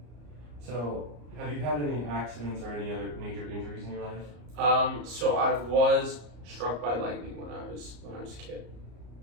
So, have you had any accidents or any other major injuries in your life? So I was struck by lightning when I was a kid.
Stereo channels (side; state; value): left; late; 34 ms